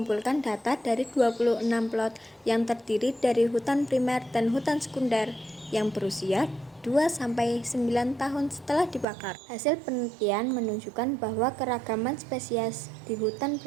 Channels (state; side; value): drops out; left; at 9.1 s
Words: data dari 26 plot yang terdiri dari hutan primer dan hutan sekunder yang berusia 2-9 tahun setelah dibakar. Hasil penelitian menunjukkan bahwa keragaman spesies di hutan